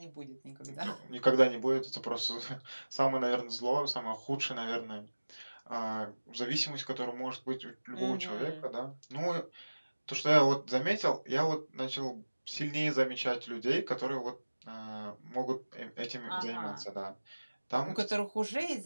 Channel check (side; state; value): both; inverted; correlation -1.00